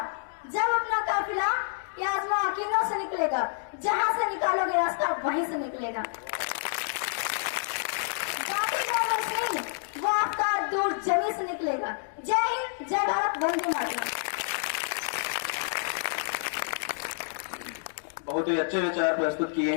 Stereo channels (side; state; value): right; silent; digital silence